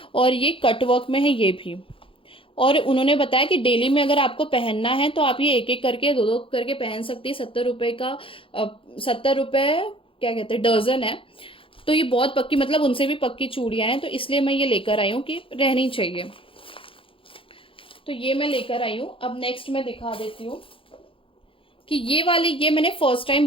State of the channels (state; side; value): late; right; 0.26 ms